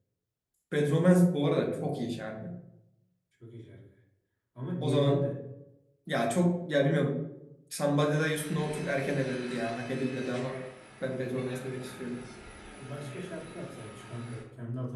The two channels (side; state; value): both; identical; correlation 1.00